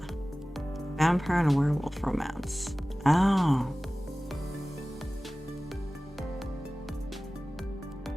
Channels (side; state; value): both; normal; correlation 0.97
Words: and a werewolf romance. Oh.